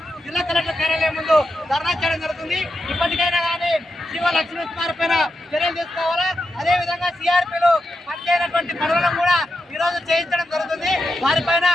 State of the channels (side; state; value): both; normal; correlation 0.87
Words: జిల్లా కలెక్టర్ కార్యాలయం ముందు ధర్నా చేయడం జరుగుతుంది. ఇప్పటికైనా కానీ సిఓ లక్ష్మీకుమారి పైన చర్యలు తీసుకోవాలా. అదేవిధంగా సిఆర్పీలు పనిచేయనటువంటి పనులను కూడా ఈరోజు చేయించడం జరుగుతుంది. వారిపైన